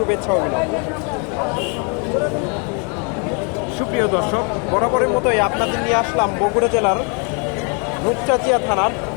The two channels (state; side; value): quieter; right; 36.3 dB